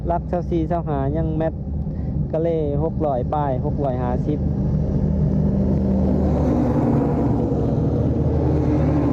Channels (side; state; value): both; identical; correlation 1.00